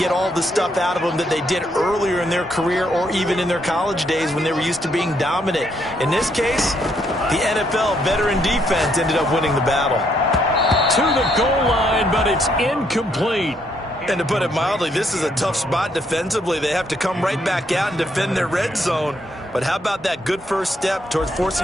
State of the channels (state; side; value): normal; both; correlation 0.73